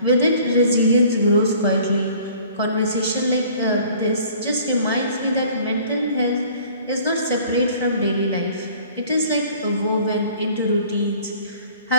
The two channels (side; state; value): both; inverted; correlation -0.52